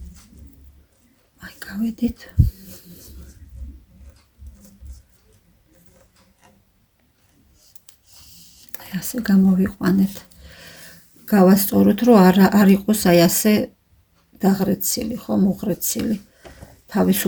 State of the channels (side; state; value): both; identical; correlation 1.00